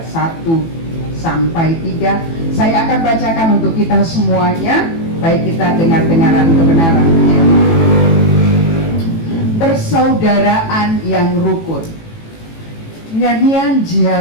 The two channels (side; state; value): right; late; 18 ms